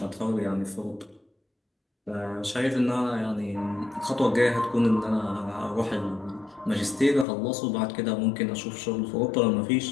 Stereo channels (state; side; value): drops out; right; at 7.2 s